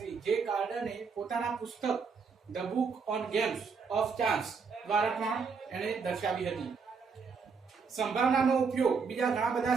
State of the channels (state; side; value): quieter; left; 5.4 dB